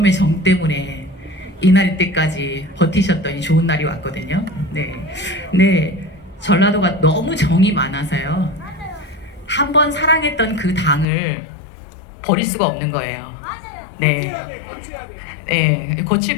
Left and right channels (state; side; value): drops out; right; at 11.1 s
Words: 정 때문에 이날 때까지 버티셨더니 좋은 날이 왔거든요. 네. 근데 전라도가 너무 정이 많아서요. 한번 사랑했던 그 당을 버릴 수가 없는 거예요. 네. 네,